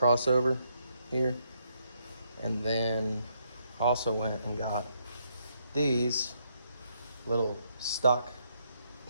here, and then also went and got these little stock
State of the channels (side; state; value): both; inverted; correlation -0.74